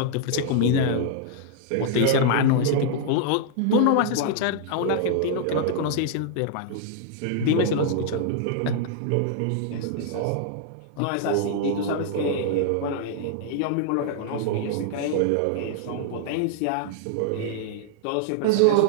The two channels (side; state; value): both; different; correlation -0.01